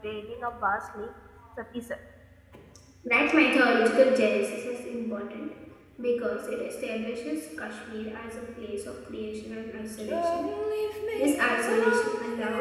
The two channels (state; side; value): identical; both; correlation 1.00